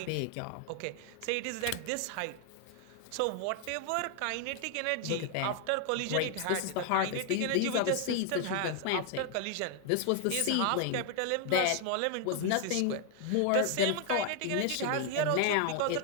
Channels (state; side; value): different; both; correlation 0.00